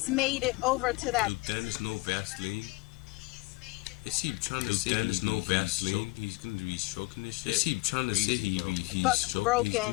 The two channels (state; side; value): quieter; right; 24.3 dB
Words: made it over to that. Duke Dennis, no Vaseline. Is he trying to say Dennis, no Vaseline? He's gonna be stroking this shit. Is he trying to say he's gonna be